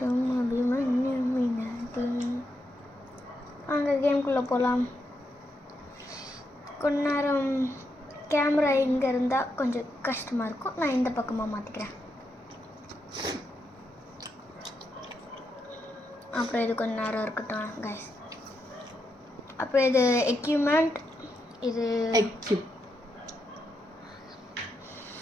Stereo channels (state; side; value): normal; both; correlation 0.83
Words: அபிமன்யு மினாதி. அங்கே கேம்குள்ளே போகலாம். கொஞ்ச நேரம் கேமரா இங்கே இருந்தால் கொஞ்சம் கஷ்டமாக இருக்கும். நான் இந்த பக்கமாக மாற்றிக்கிறேன். அப்புறம் இது கொஞ்ச நேரம் இருக்கட்டும் கைஸ். அப்புறம் இது எக்யூப்மெண்ட், இது